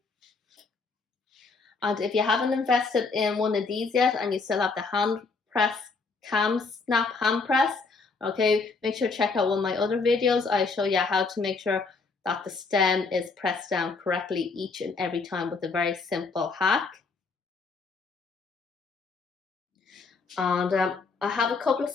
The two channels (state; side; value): quieter; right; 4.3 dB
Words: And if you haven't invested in one of these yet and you still have the hand press KAM snap hand press, okay, make sure to check out one of my other videos. I show you how to make sure that the stem is pressed down correctly each and every time with a very simple hack. And I have a couple of